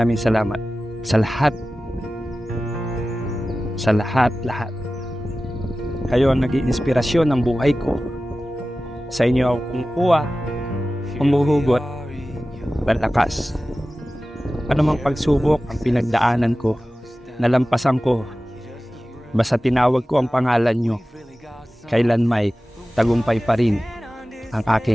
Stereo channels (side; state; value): both; normal; correlation 0.95